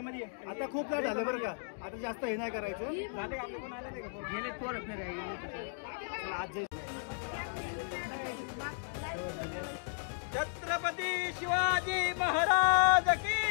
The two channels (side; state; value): right; silent; digital silence